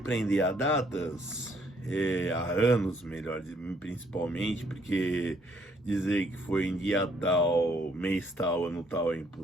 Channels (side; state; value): both; normal; correlation 0.67